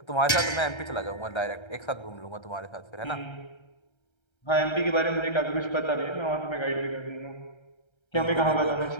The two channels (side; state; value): right; late; 1.3 ms